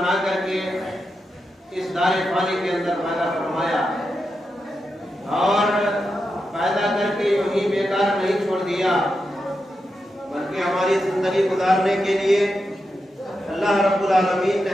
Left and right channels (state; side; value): normal; both; correlation 0.87